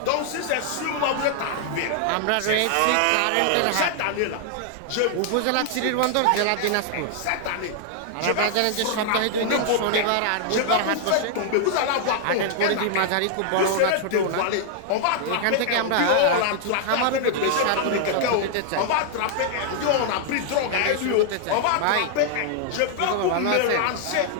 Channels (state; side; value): different; both; correlation -0.01